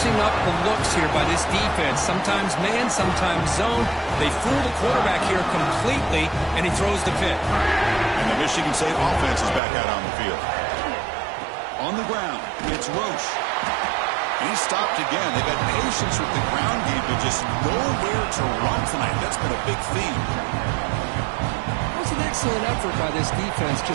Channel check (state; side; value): drops out; left; at 9.6 s